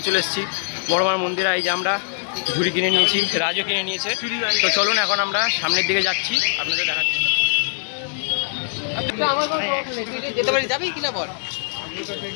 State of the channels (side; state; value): right; silent; digital silence